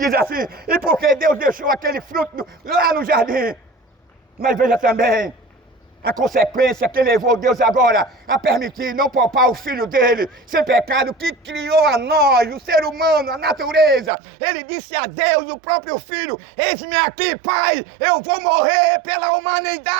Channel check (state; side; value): drops out; left; at 14.1 s